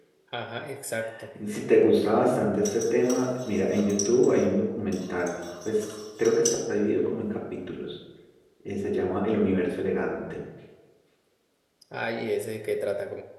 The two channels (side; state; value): both; identical; correlation 1.00